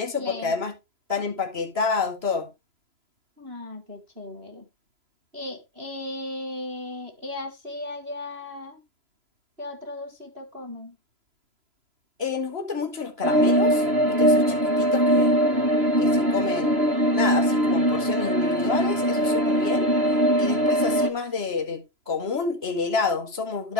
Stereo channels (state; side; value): late; left; 3.0 ms